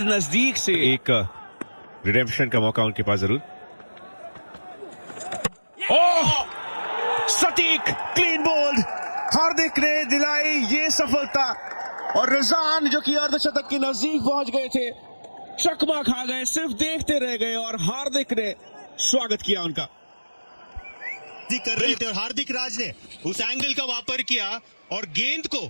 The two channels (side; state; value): both; inverted; correlation -1.00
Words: नजदीक से एक रिडेम्पशन का मौका उनके पास जरूर। ओह, सटीक क्लीन बोल्ड, हार्दिक ने दिलाई ये सफलता और रिजान जो कि अर्धशतक के नजदीक पहुंच गए थे, चकमा खा गए, सिर्फ देखते रह गए और हार्दिक ने स्वागत किया उनका। कर रहे थे और हार्दिक राज ने उस एंगल का वापर किया और गेंद को